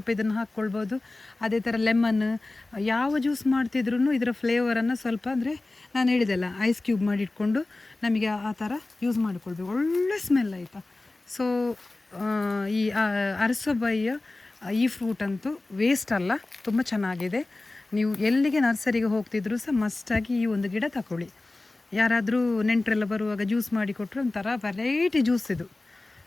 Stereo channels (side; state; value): right; quieter; 3.0 dB